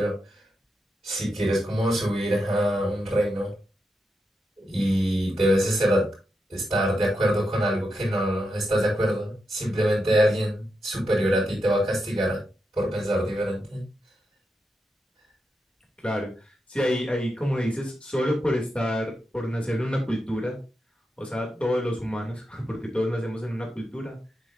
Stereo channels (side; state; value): both; normal; correlation 0.86